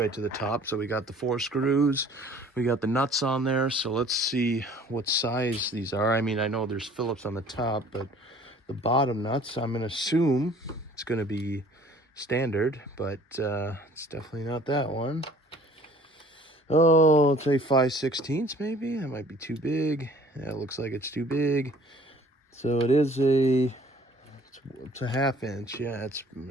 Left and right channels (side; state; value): both; normal; correlation 0.53